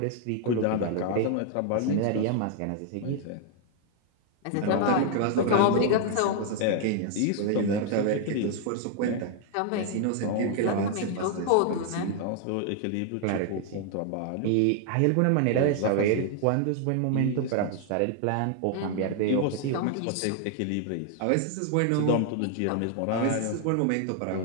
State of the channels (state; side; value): different; both; correlation 0.00